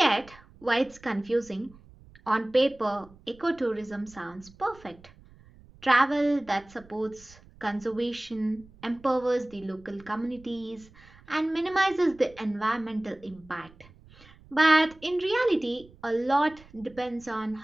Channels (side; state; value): right; noise; rumble, 24 dB below the sound